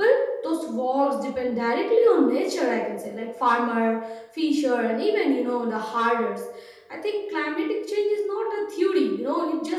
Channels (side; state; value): both; identical; correlation 1.00